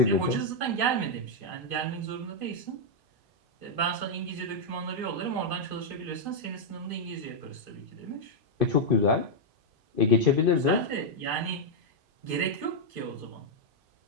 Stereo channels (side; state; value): left; late; 2.5 ms